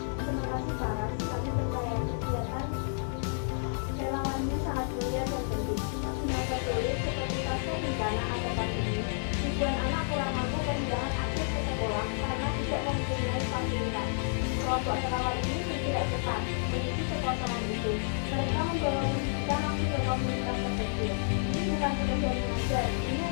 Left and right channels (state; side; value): silent; right; digital silence